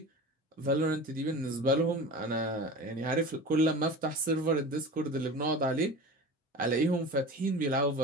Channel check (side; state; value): both; normal; correlation 0.34